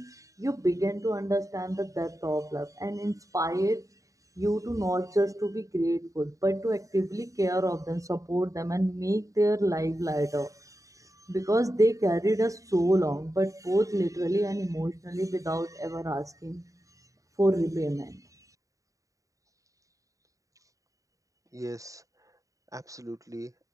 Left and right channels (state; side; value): late; left; 0.16 ms